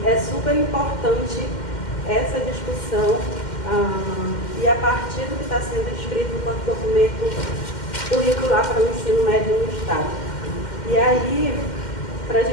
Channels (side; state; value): right; late; 2.1 ms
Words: é super importante essa discussão e a partir do que está sendo escrito enquanto documento curricular para o ensino médio no Estado. E aí, para a